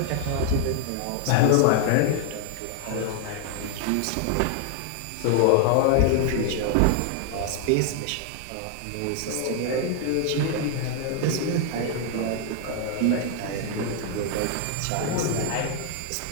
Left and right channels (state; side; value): different; both; correlation 0.00